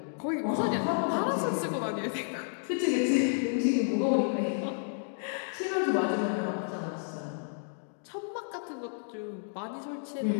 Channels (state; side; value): silent; right; digital silence